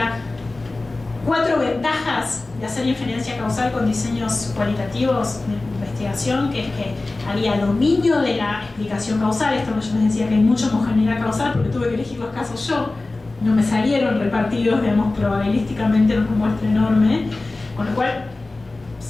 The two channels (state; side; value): quieter; right; 3.2 dB